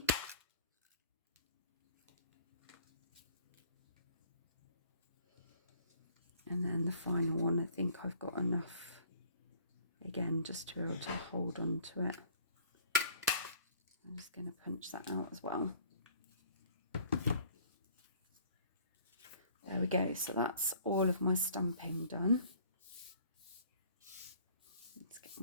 And then the final one, I think I've got enough, again, just to be able to hold on to it. I'm just going to punch that out as well. There we go. So that's all of my stamping done. Let's get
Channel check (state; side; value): inverted; both; correlation -0.54